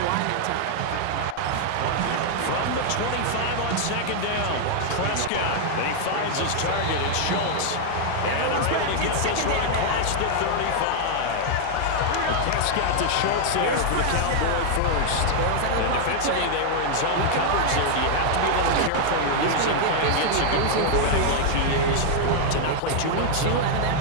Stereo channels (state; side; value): different; both; correlation 0.00